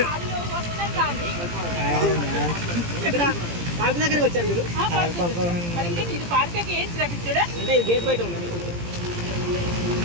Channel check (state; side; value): late; left; 17 ms